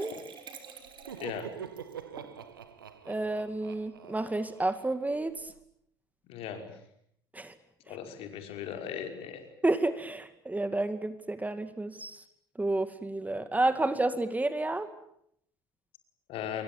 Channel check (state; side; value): normal; both; correlation 0.85